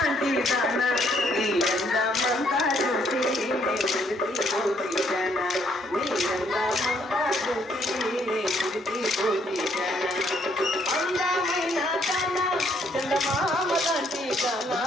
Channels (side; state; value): both; normal; correlation 0.69